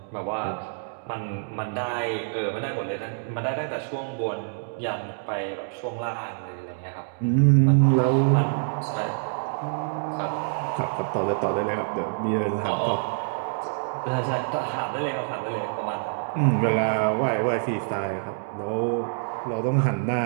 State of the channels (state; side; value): silent; left; digital silence